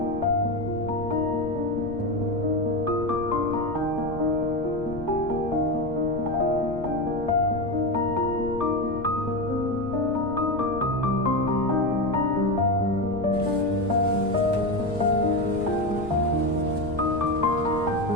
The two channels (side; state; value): left; noise; rumble, 12 dB below the sound